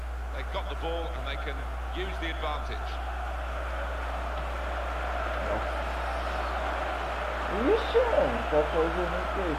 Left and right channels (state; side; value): identical; both; correlation 1.00